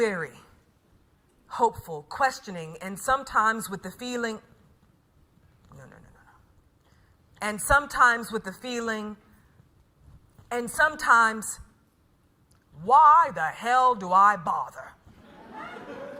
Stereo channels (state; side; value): identical; both; correlation 1.00